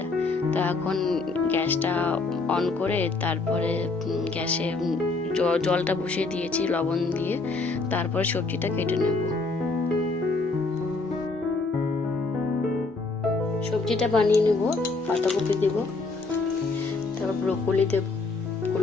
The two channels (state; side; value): quieter; right; 3.7 dB